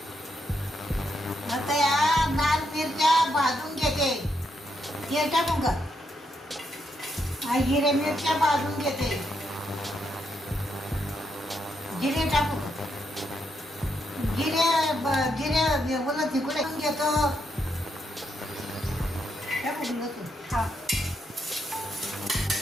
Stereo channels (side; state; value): both; normal; correlation 0.79